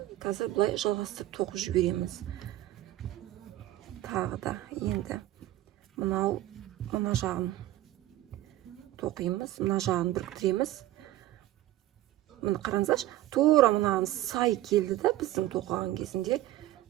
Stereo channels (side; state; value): left; quieter; 15.1 dB